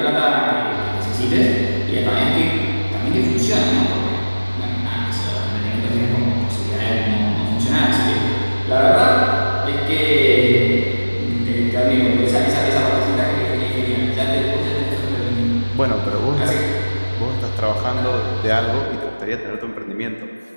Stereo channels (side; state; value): both; inverted; correlation -1.00